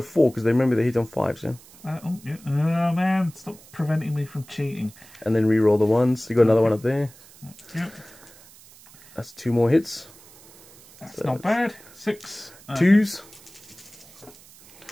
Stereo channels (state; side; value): noise; right; hiss, 23 dB below the sound